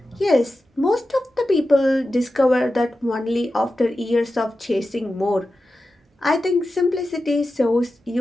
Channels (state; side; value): normal; both; correlation 0.92